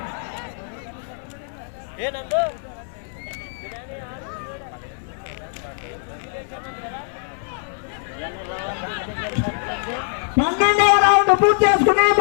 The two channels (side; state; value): right; silent; 64 dB below the other